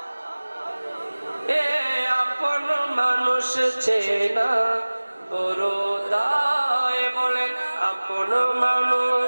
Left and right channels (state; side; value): inverted; both; correlation -1.00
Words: আপন মানুষ চেনা বড় দায়। বলেন আপন